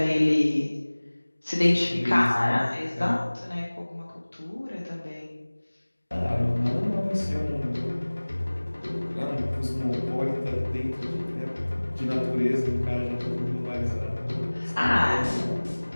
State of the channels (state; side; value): inverted; both; correlation -1.00